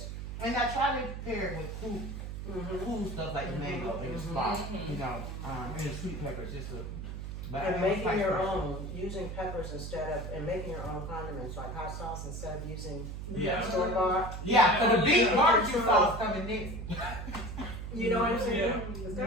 And I try to pair it with cool stuff like the mango and the spot, you know, and the sweet peppers, just to. But And making your own, using peppers and making your own condiments, like hot sauce instead of using store bought. Yeah, so the beef barbecue sauce coming next. You know what I'm saying? Yeah. Is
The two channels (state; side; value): noise; right; hum, 7 dB below the sound